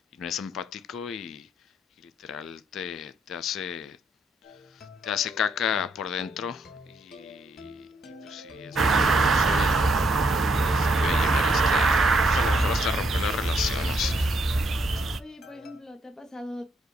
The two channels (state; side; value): normal; both; correlation 0.73